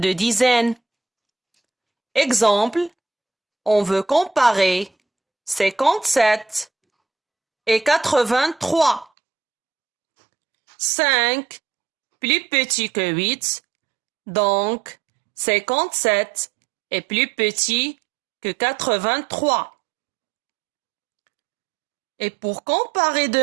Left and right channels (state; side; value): drops out; left; at 9.1 s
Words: dizaines. Exemple, on veut comparer 57 et 83. 5 plus petit que 8, donc 57 est plus petit que 83. Et pour comparer